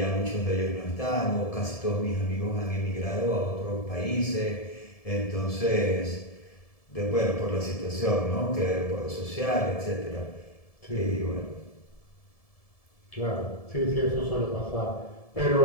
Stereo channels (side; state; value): right; late; 1.7 ms